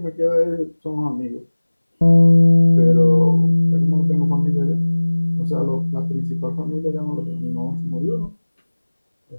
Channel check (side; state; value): both; inverted; correlation -1.00